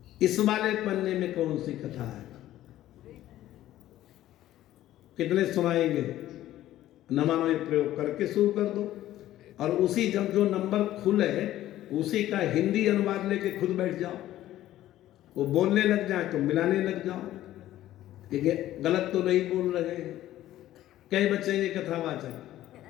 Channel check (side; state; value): right; quieter; 13.8 dB